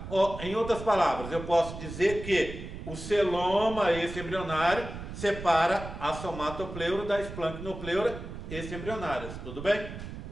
Ou, em outras palavras, eu posso dizer que o celoma extraembrionário separa a somatopleura da esplanchnopleura extraembrionárias, tudo bem?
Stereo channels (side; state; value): right; noise; rumble, 10 dB below the sound